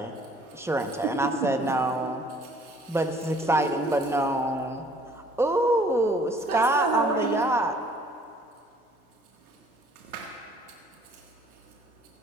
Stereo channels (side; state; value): both; normal; correlation 0.58